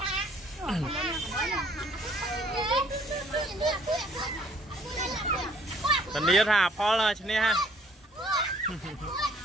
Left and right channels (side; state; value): both; normal; correlation 0.60